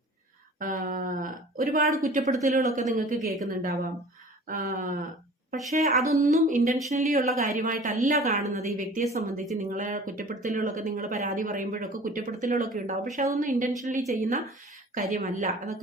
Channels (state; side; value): normal; both; correlation 0.44